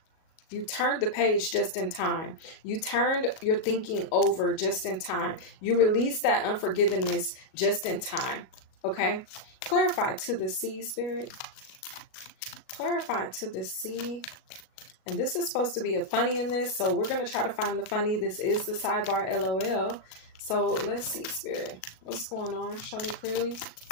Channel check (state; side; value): late; right; 37 ms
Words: the page just in time. You turned your thinking over just in time. You released that unforgiveness just in time. Okay. Clarify to the sea, Spirit. Clarify to the C. And this is supposed to be a funny in this, so we're going to try to find the funny. This is the sidebar LOL. So let's see, Spirit. What's going on? Show me clearly.